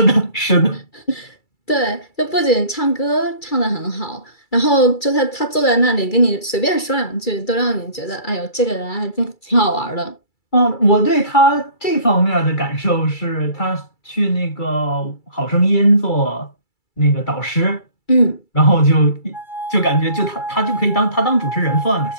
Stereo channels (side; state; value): right; late; 2.3 ms